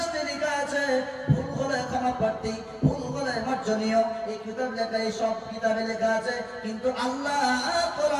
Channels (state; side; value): identical; both; correlation 1.00